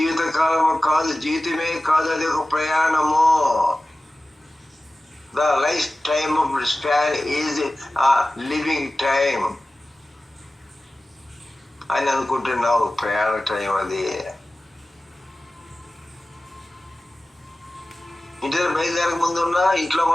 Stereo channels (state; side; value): normal; both; correlation 0.96